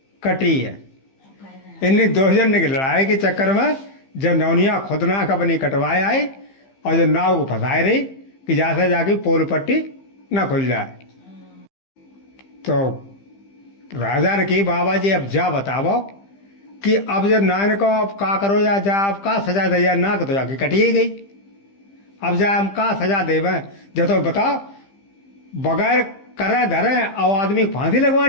कटी है। इन्हीं दो जन की लड़ाई के चक्कर में जब नौनिया खुद नाक अपनी कटवाए आई और जब नाव को फंसाए रही कि जैसे जाके पोल पट्टी ना खुल जाए। तो राजा ने की बाबा जी अब जा बताओ कि अब जब नान को अब का करो या जा अब का सजा दे या नाक तो जाके कटी गई, अब जा हम का सजा देवे जो तो बताओ बगैर करे धरे और आदमी फांसी लगवा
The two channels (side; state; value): right; late; 15 ms